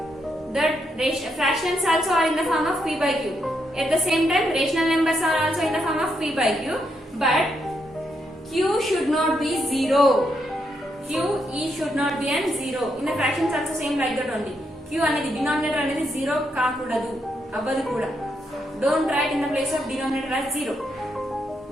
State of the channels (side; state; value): both; normal; correlation 0.79